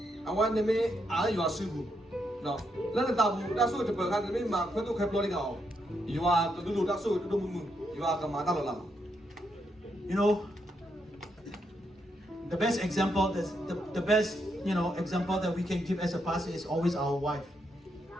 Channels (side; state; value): both; normal; correlation 0.80